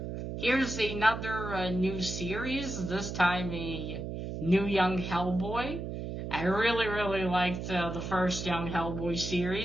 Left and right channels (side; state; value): right; noise; hum, 6 dB below the sound